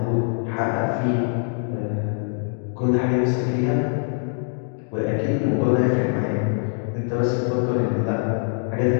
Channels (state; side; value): silent; right; 57 dB below the other